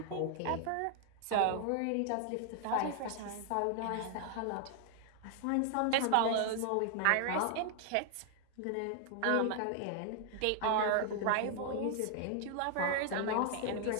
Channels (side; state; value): both; different; correlation 0.00